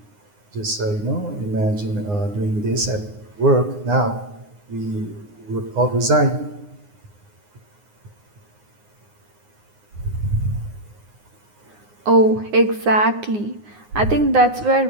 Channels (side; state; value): left; late; 9.7 ms